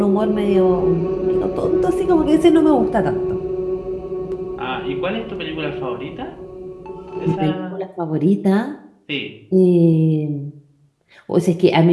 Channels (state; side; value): identical; both; correlation 1.00